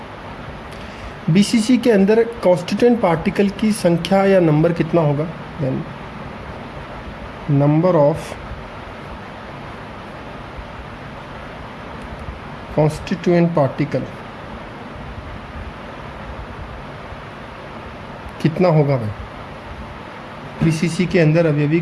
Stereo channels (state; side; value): identical; both; correlation 1.00